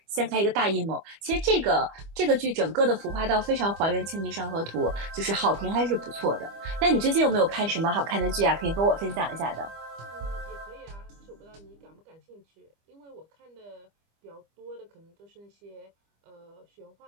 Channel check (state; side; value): late; left; 25 ms